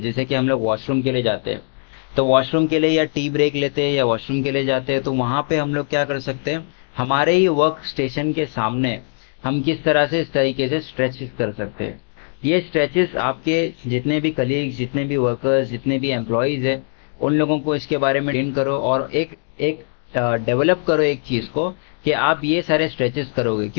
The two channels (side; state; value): right; silent; digital silence